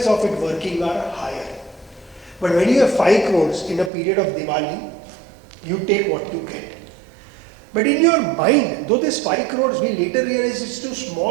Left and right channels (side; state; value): left; drops out; at 3.9 s